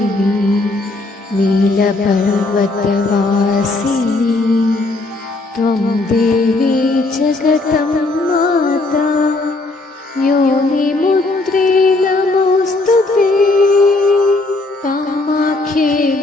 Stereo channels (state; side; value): quieter; right; 3.1 dB